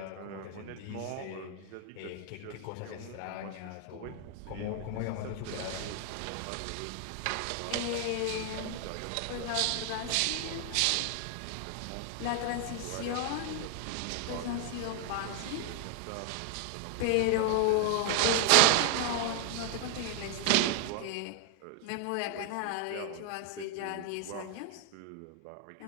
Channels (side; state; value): both; different; correlation 0.00